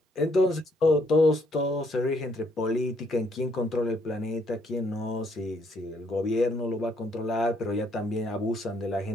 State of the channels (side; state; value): both; normal; correlation 0.69